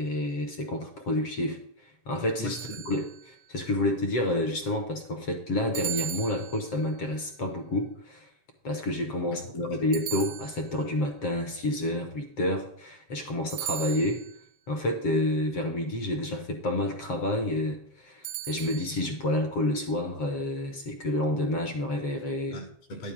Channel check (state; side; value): late; right; 7.6 ms